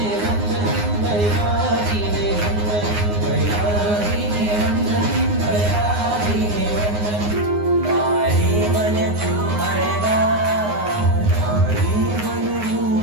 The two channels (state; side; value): late; left; 9.6 ms